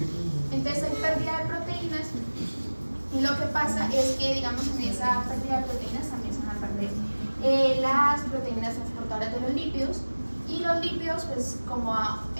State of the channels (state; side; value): inverted; both; correlation -1.00